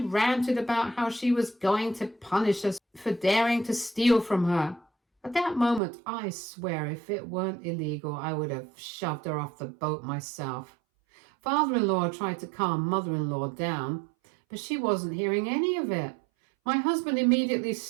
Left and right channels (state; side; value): drops out; left; at 5.8 s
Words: about how she was going to punish us for daring to steal from her. At that moment, I swear if it weren't illegal, I would have shoved her off the boat myself. Father-in-law tried to calm mother-in-law down, but she wasn't hearing any of it. My husband immediately